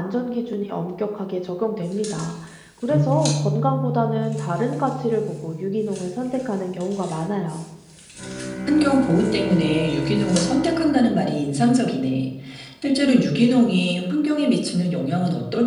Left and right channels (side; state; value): both; identical; correlation 1.00